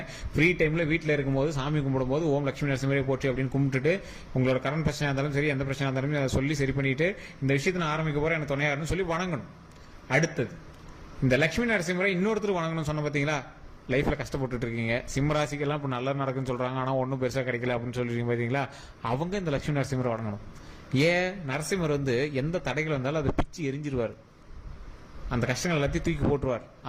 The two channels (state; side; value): identical; both; correlation 1.00